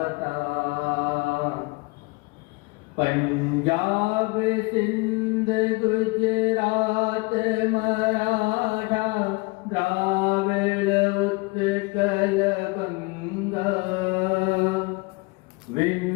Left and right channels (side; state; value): right; quieter; 26.3 dB